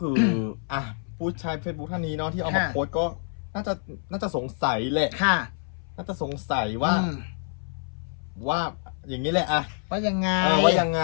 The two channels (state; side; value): silent; right; 60 dB below the other